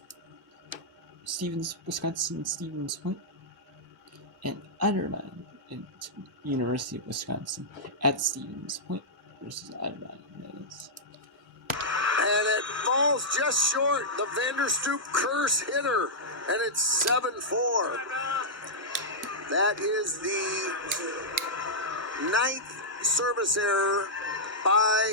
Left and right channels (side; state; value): both; normal; correlation -0.10